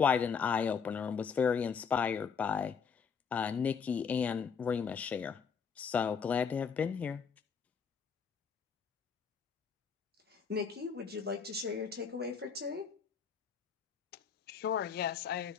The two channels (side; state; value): right; quieter; 6.4 dB